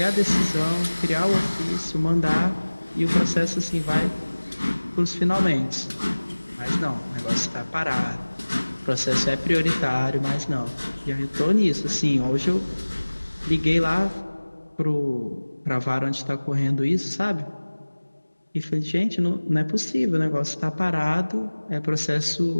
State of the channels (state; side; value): inverted; both; correlation -1.00